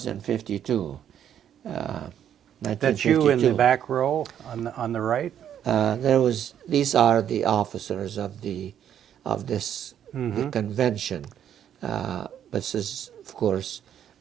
in 52, 1952. That's you in the back row on the right? These are the officers of this the convention. This is, of course,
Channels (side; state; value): left; quieter; 9.7 dB